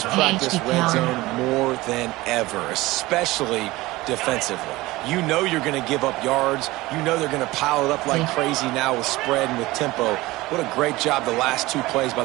practice red zone more than ever, especially defensively. You know you're going to give up yards. You know they're going to pile it up like crazy now with spread and with tempo. What a great job the last 2 plays by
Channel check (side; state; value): left; quieter; 19.5 dB